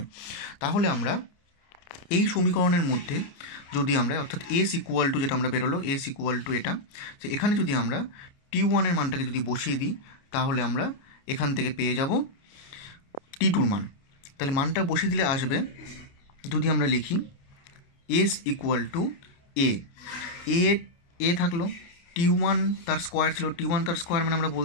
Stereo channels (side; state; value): right; late; 29 ms